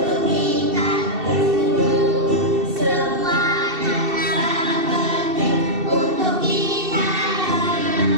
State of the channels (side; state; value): left; late; 2.7 ms